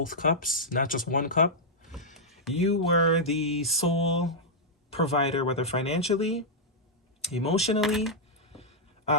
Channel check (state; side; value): normal; both; correlation -0.07